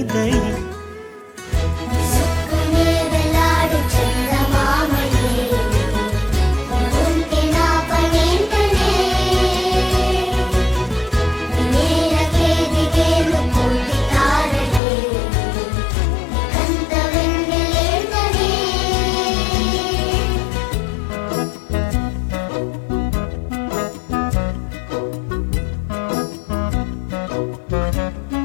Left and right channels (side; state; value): right; drops out; at 14.8 s